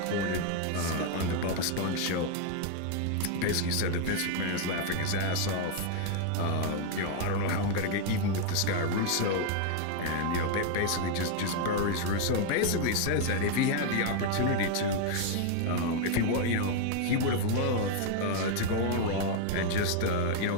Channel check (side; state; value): both; different; correlation 0.00